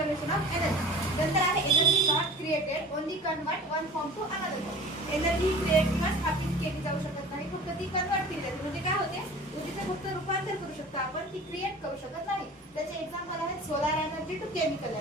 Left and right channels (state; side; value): normal; both; correlation 0.41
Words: ऑफ एनर्जी. नंतर आहे energy not created, only convert one form to another form. Energy create किंवा स्थापित केली जाऊ शकत नाही, फक्त ती कन्वर्ट केली जाते. म्हणजे काय होते, ऊर्जेचे फक्त रूपांतर करू शकतो आपण, ती क्रिएट करू शकत नाही. त्याचे एक्झाम्पल आहेत solar energy to chemical